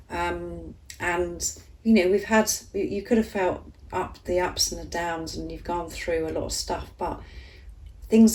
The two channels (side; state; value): both; identical; correlation 1.00